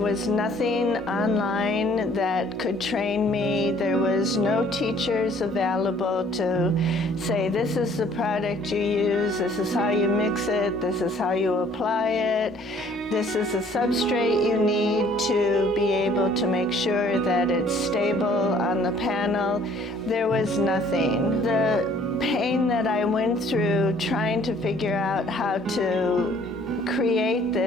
was nothing online that could train me. There was no teachers available to say, this is the product you use, this is how you mix it, this is how you apply it, this is the substrate you need to be able to make sure that it's stable on the panel. There was nothing. The pain that I went through trying to figure out how to create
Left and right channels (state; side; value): normal; both; correlation 0.58